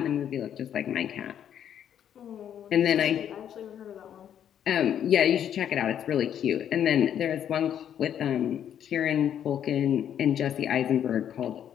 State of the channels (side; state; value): right; quieter; 9.6 dB